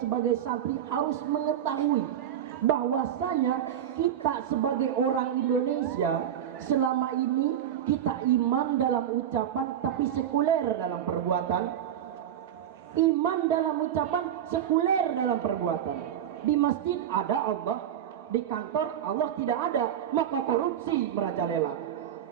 sebagai santri harus mengetahui bahwasanya kita sebagai orang Indonesia selama ini kita iman dalam ucapan tapi sekuler dalam perbuatan. Iman dalam ucapan, sekuler dalam perbuatan. Di masjid ada Allah, di kantor Allah tidak ada, maka korupsi merajalela.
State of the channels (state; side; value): quieter; left; 10.0 dB